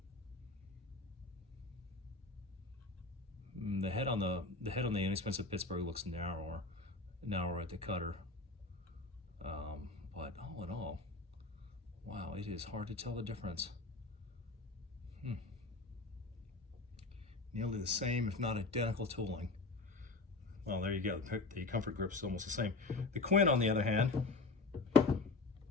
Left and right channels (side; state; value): right; quieter; 3.4 dB